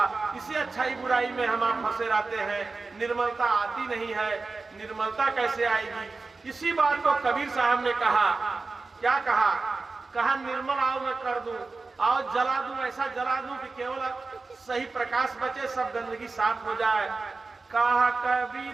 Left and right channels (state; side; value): quieter; left; 3.9 dB